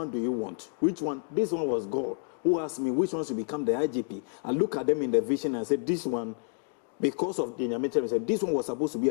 do you want? Which one? This one was God who asked me, which one should become the IGP? I look at them in the vision and I said, this one, because of the Nyame, I said, this one was supposed to be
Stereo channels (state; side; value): silent; right; 58 dB below the other